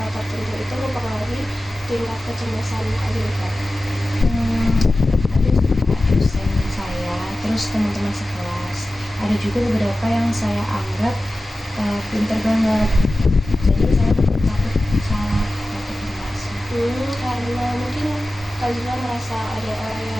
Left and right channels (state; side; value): normal; both; correlation 0.95